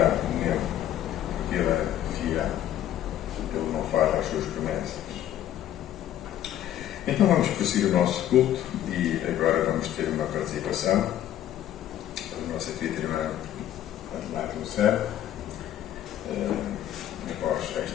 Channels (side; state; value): right; quieter; 11.8 dB